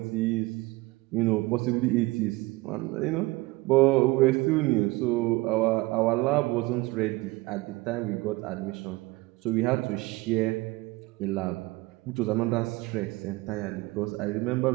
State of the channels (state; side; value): quieter; left; 21.9 dB